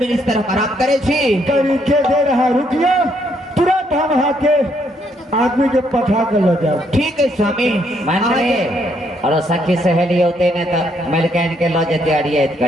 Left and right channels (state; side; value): normal; both; correlation 0.72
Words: हम आराम करे छी तरीके दे रहा रुकिए तुरंत हम यहाँ के आदमी के पठा कर ले जाओ ठीक है स्वामी मान रे और सखी सहेली होते ने तो मलकैन के लो जते अड़ियत